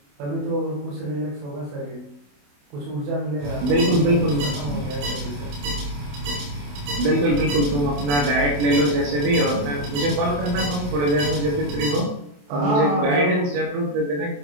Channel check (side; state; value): left; late; 28 ms